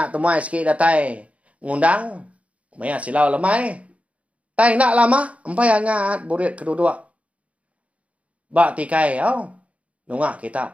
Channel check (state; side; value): late; left; 0.066 ms